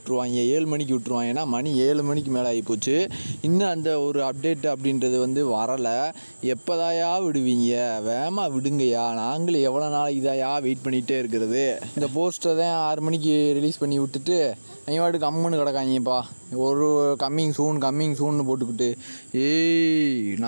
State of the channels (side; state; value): both; inverted; correlation -1.00